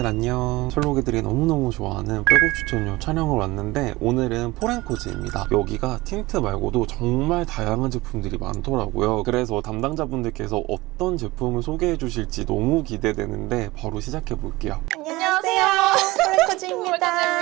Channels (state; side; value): quieter; left; 20.5 dB